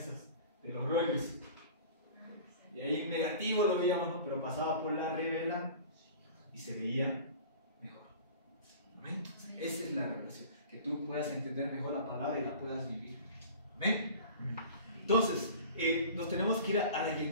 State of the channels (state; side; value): inverted; both; correlation -0.41